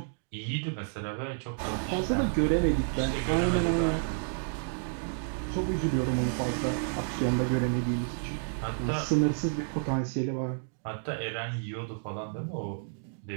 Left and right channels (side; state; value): left; silent; digital silence